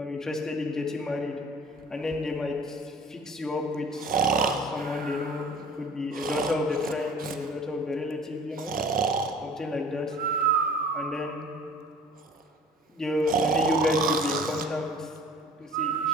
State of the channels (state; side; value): normal; both; correlation 0.47